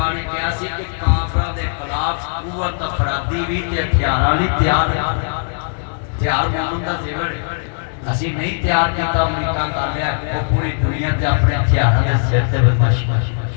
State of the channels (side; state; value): right; silent; digital silence